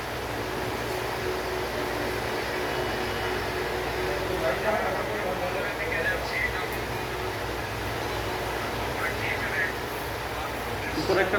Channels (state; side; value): identical; both; correlation 1.00